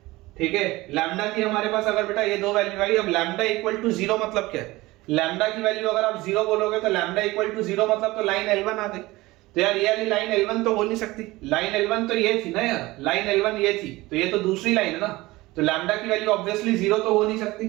ठीक है। लैम्डा की हमारे पास अगर बेटा ये दो वैल्यू आई, अब लैम्डा इक्वल टू 0 मतलब क्या है, लैम्डा की वैल्यू अगर आप 0 बोलोगे तो लैम्डा इक्वल टू 0 मतलब तो लाइन L1 आ गई, तो यार ये वाली लाइन L1 तो हो नहीं सकती, लाइन L1 तो ये थी ना यार, लाइन L1 ये थी तो ये तो दूसरी लाइन है ना, तो लैम्डा की वैल्यू ऑब्वियसली 0 तो हो नहीं सकती,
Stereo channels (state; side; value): quieter; left; 19.9 dB